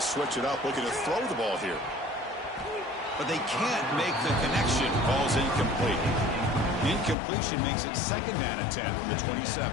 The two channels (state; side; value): drops out; right; at 7.2 s